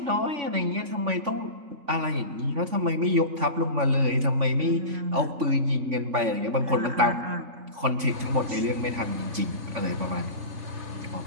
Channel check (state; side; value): late; left; 3.5 ms